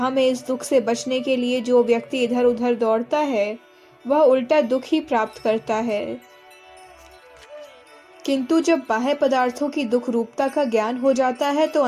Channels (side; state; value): both; identical; correlation 1.00